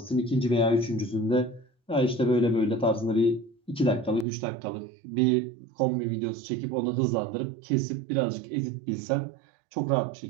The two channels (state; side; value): drops out; left; at 4.2 s